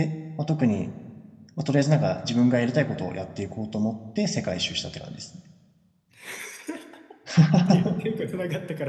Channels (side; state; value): both; identical; correlation 1.00